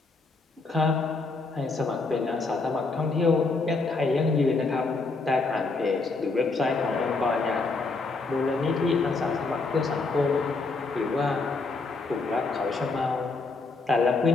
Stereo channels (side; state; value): right; quieter; 3.8 dB